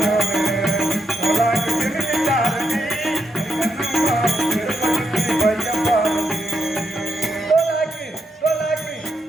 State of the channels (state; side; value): normal; both; correlation 0.82